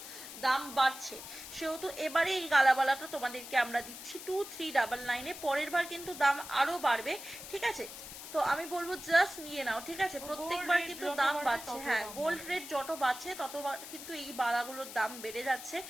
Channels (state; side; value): noise; left; hiss, 12 dB below the sound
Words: দাম বাড়ছে, সেহেতু এবারে এই গালাবালাটা তোমাদেরকে আমরা দিচ্ছি 2399-এ। পরের বার কিন্তু দাম আরো বাড়বে, ঠিক আছে। তো আমি বলবো জাস্ট নিয়ে নাও, ঠিক আছে। প্রত্যেকবার কিন্তু দাম বাড়ছে, হ্যাঁ গোল্ড রেট যত বাড়ছে তত কিন্তু এই বালাগুলোর দাম বেড়ে যাচ্ছে,